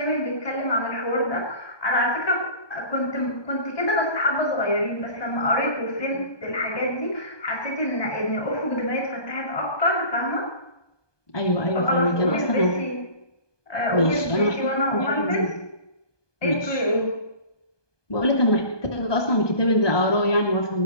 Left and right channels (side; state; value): right; late; 1.2 ms